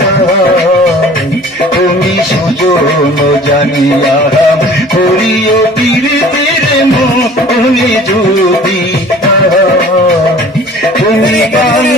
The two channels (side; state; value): both; normal; correlation 0.47